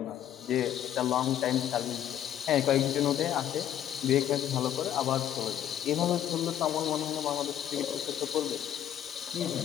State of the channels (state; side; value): quieter; right; 10.9 dB